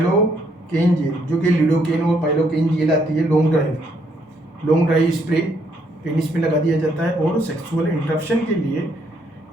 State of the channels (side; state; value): both; normal; correlation 0.71